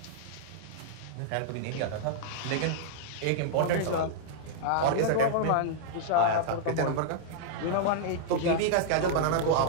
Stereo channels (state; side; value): different; both; correlation -0.01